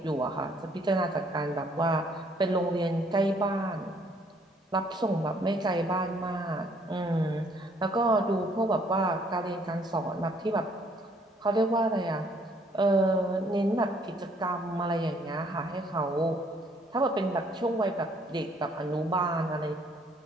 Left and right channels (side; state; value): both; normal; correlation 0.64